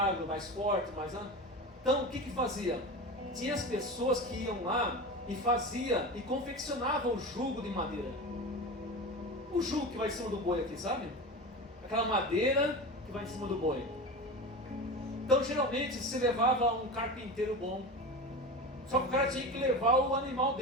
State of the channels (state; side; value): normal; both; correlation 0.27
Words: mais forte, mais... Então, o que fazia? Tinha as pessoas que iam lá e fazia e confeccionavam o jugo de madeira. O jugo que vai em cima do boi aqui, sabe? Aquela madeira que vai em cima do boi. Então, geralmente, se levava um carpinteiro bom. Só que o cara tinha que levar o animal